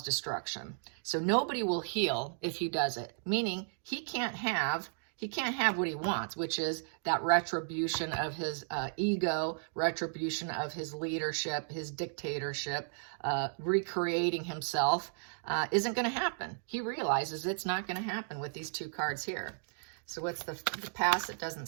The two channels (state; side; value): silent; left; digital silence